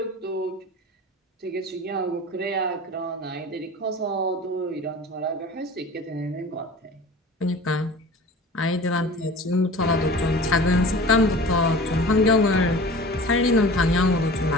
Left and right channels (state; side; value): normal; both; correlation 0.40